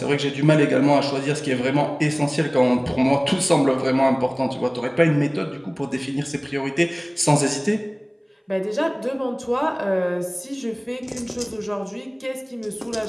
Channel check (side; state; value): both; identical; correlation 1.00